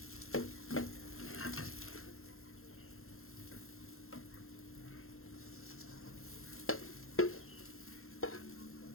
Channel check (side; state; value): right; late; 0.62 ms